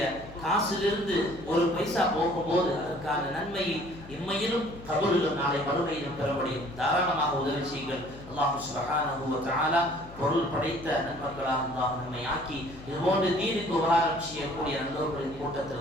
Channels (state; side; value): noise; left; hum, 17 dB below the sound